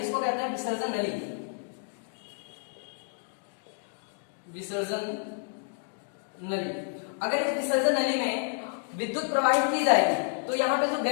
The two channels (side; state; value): right; silent; digital silence